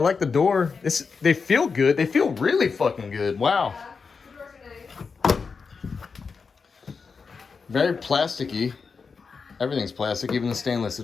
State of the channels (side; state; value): right; quieter; 5.1 dB